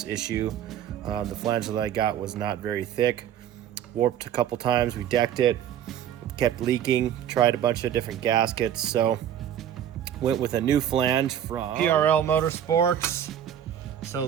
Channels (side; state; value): left; quieter; 10.1 dB